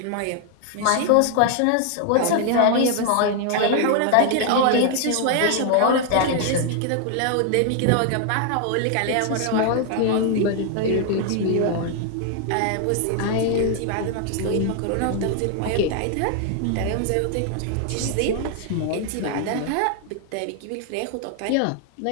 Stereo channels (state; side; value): different; both; correlation 0.00